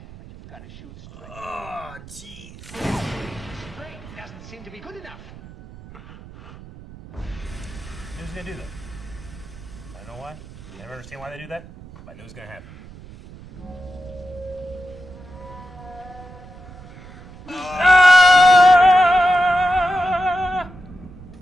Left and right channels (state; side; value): noise; right; rumble, 18 dB below the sound